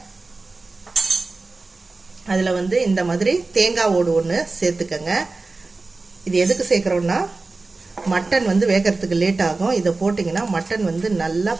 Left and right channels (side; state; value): left; quieter; 3.6 dB